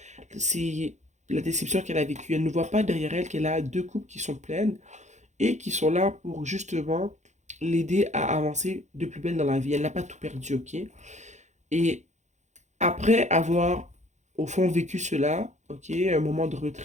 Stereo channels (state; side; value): late; left; 0.34 ms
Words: C'est la déception qu'elle a vécue. Elle ne voit pas derrière elle qu'elle a deux coupes qui sont pleines et qui sont là pour justement l'aider à avancer de plus belle dans la vie. Elle n'a pas tout perdu, ok? Et après avoir, au fond, vécu cela, ok, un moment de